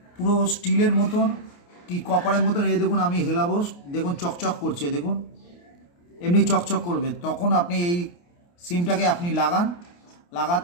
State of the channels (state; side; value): late; right; 29 ms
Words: পুরো স্টিলের মতন কি কপারের মতন। এই দেখুন আমি হেলাবো, দেখুন চকচক করছে, দেখুন এমনি চকচক করবে। তখন আপনি এই সিমটাকে আপনি